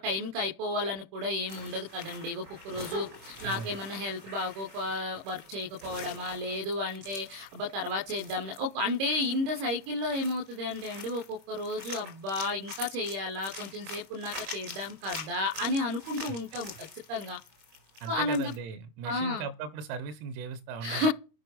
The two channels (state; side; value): late; left; 26 ms